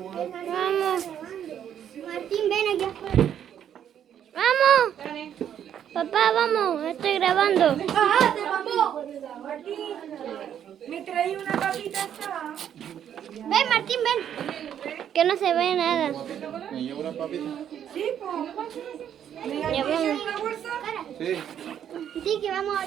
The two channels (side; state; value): left; quieter; 9.5 dB